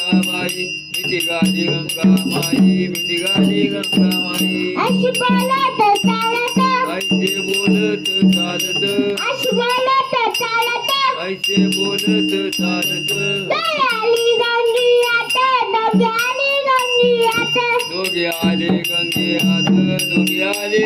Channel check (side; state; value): both; identical; correlation 1.00